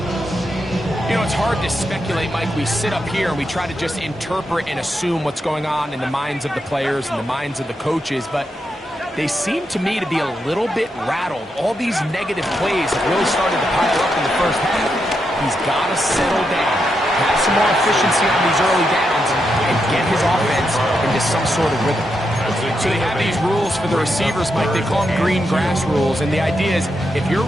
You know, it's hard to speculate, Mike. We sit up here and we try to just interpret and assume what's going on in the minds of the players and the minds of the coaches, but they seem to me to be a little bit rattled. All these negative plays have really started to pile up in the first half. He's got to settle down, have some more efficiency on these early downs, and get his offense into some sort of rhythm. So they have these rules for the receivers, Mike. They call them green grass rules, and the idea is if you're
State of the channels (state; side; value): normal; both; correlation 0.84